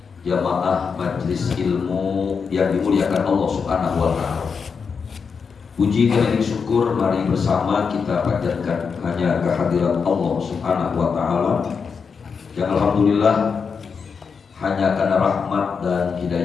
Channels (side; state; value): right; quieter; 5.8 dB